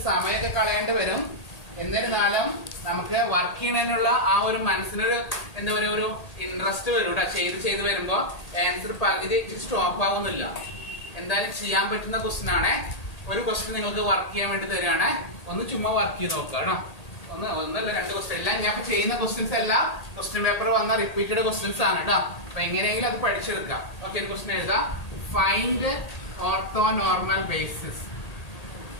സമയമൊക്കെ കളയേണ്ടി വരും. എന്നിരുന്നാലും നമുക്ക് വർക്ക് ചെയ്യുന്നതിനുള്ള ആ ഒരു മനസ്സിനൊരു എന്താ പറയുക, ഒരു ഇൻട്രസ്റ്റ് വരും കേട്ടോ. ചെയ്ത് വരുമ്പോ ആൻസർ പകുതി സ്റ്റോപ്പ് ആവുന്നില്ല. എന്തായാലും ചെയ്യാൻ പറ്റുന്ന ക്വസ്റ്റ്യൻ ആണ്. ഒരു ക്വസ്റ്റ്യൻ നിങ്ങൾക്ക് വർക്ക് ചെയ്യാൻ വേണ്ടി തരികയാണ്. ഒന്ന് ചുമ്മാ വർക്ക് ചെയ്ത് നോക്കുക കേട്ടോ. ഒന്നല്ല, 2 ക്വസ്റ്റ്യൻ. എല്ലാം ഞാൻ ചെയ്യുന്ന ക്വസ്റ്റ്യൻസ് എല്ലാം ക്വസ്റ്റ്യൻ പേപ്പർ വന്ന റിപ്പീറ്റഡ് ക്വസ്റ്റ്യൻസ് ആണ് കേട്ടോ. അപ്പൊ എങ്ങനെയെങ്കിലും അത് പഠിച്ചെടുക്കാം. ഓക്കെ, ഒരു ക്വസ്റ്റ്യൻ എഴുതാം. Find orthonormal basis.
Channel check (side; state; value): right; late; 1.8 ms